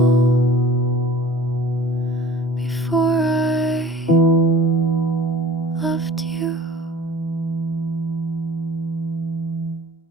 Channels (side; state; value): both; normal; correlation 0.46